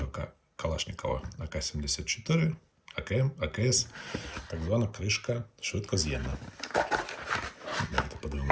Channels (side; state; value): both; identical; correlation 1.00